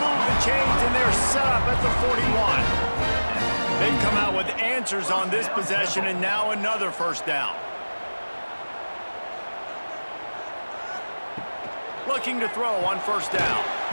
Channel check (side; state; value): both; inverted; correlation -1.00